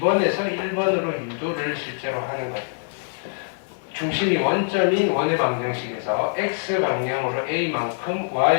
1번으로 유도를 실제로 하는 거예요. 중심이 원점인 원의 방정식에서 x 방향으로 a만큼,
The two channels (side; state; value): right; silent; 63 dB below the other